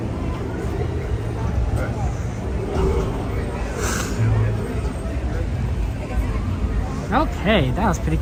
Okay, that was pretty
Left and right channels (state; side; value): identical; both; correlation 1.00